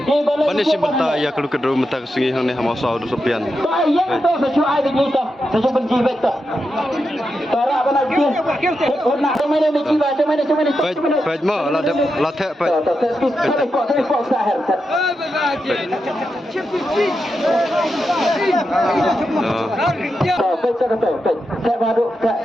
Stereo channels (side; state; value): both; normal; correlation 0.87